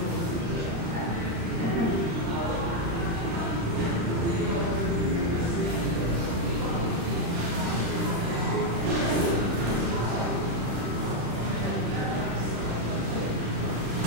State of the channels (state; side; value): late; left; 36 ms